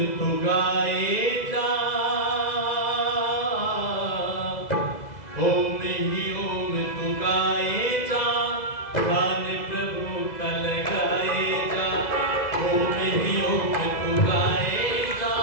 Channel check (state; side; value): late; right; 2.0 ms